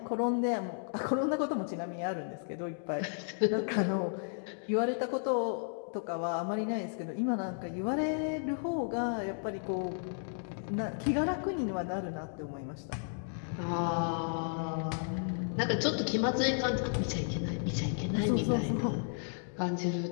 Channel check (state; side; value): silent; right; digital silence